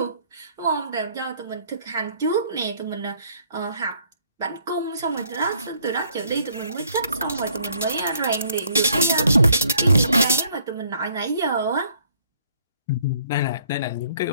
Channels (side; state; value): both; inverted; correlation -0.63